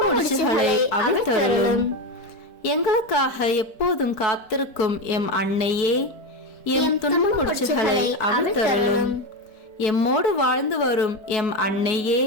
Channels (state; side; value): late; right; 4.6 ms